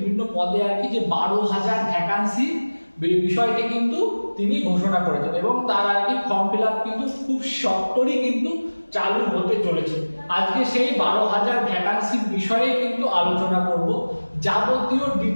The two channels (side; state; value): both; inverted; correlation -1.00